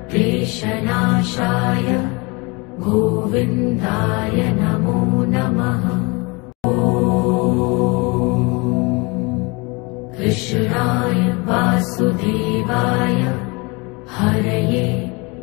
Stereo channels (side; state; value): right; quieter; 27.7 dB